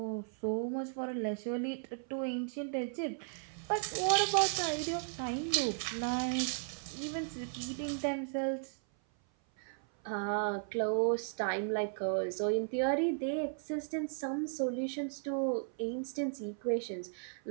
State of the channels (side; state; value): left; silent; 54 dB below the other